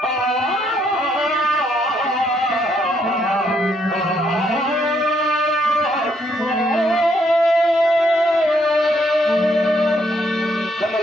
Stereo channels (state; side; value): normal; both; correlation 0.73